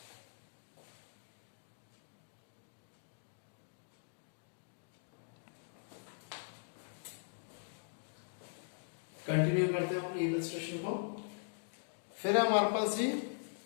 कंटिन्यू करते हैं अपने इलस्ट्रेशन को। फिर हमारे पास जी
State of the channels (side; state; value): right; silent; digital silence